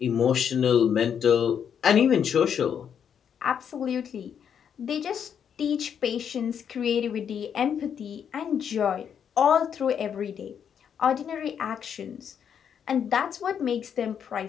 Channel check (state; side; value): quieter; right; 8.0 dB